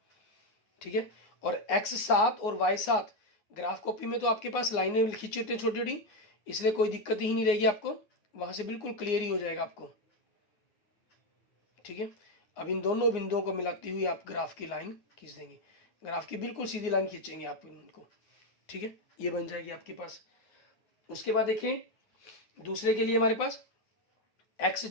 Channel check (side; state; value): right; late; 9.6 ms